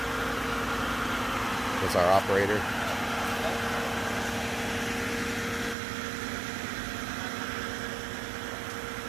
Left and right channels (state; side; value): drops out; left; at 5.8 s